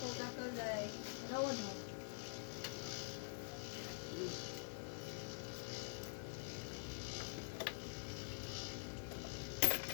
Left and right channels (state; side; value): silent; right; digital silence